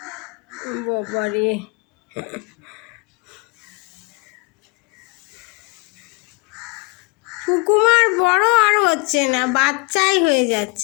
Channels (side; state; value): right; quieter; 28.0 dB